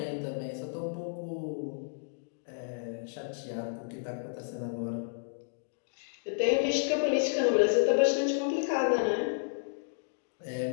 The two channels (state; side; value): silent; right; digital silence